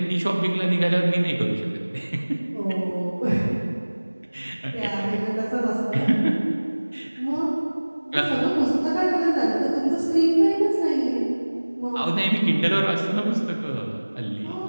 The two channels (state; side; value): inverted; both; correlation -1.00